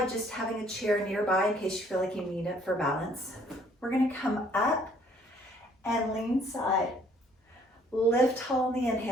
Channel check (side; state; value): both; normal; correlation 0.61